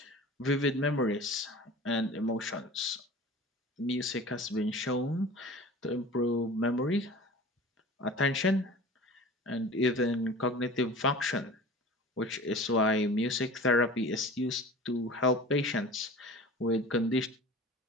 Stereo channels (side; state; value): both; normal; correlation 0.39